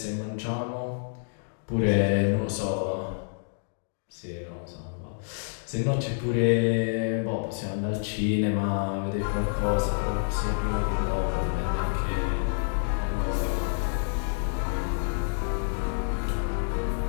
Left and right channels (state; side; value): silent; right; digital silence